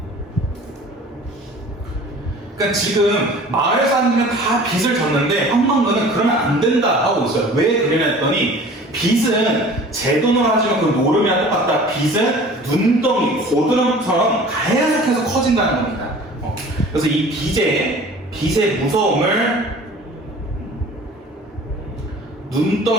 그러니까 지금 마을 사람들은 다 빚을 졌는데 황망근은 그러면 안 된다 하고 있어요. 왜 그러냐 했더니 빚은 제 돈으로 하지만 그 노름이랑 똑같다. 빚은 눈덩이, 고드름처럼 계속해서 커진다는 겁니다. 그래서 이 빚의 무서움을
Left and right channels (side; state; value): both; normal; correlation 0.45